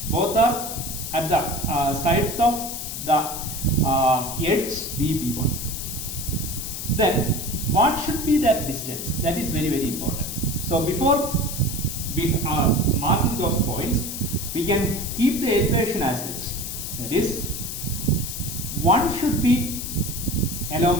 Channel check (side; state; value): left; noise; hiss, 6 dB below the sound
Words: Both are at the sides of the edge B1. Then what should be that distance? That is very, very important. So before we are marking those points, we can keep the elevation as such. That is, 1 should be